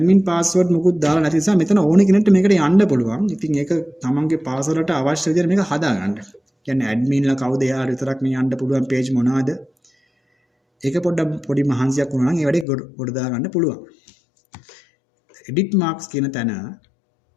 password මොකුත් දාලා නැති නිසා මෙතන ඕන කෙනෙක්ට මේකට යන්න පුළුවන්. ඉතින් ඒක තමන්ගේ password වලට අවශ්‍ය විදිහට මේක හදාගන්න. කියන්නේ admin ලා කවුද එයාට විතරක් මේ යන්න පුළුවන් page මොනවාද? ඒක පොඩි මහන්සියක් වුණා නම් ඒ වැඩේ ගොඩ දා ගන්න පුළුවන්. edit marks කියන තැන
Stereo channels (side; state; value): right; drops out; at 12.7 s